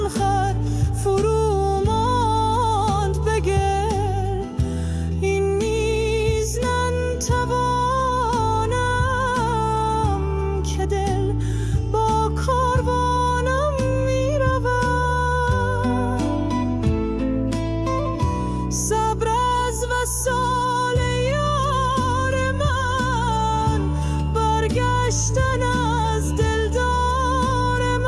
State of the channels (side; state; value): both; identical; correlation 1.00